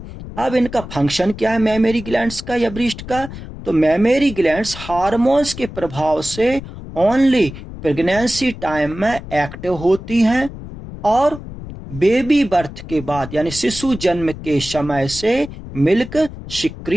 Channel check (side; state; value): left; noise; rumble, 12 dB below the sound